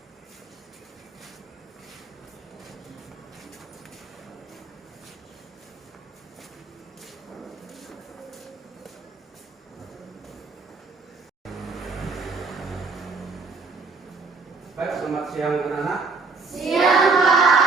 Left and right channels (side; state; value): left; quieter; 4.3 dB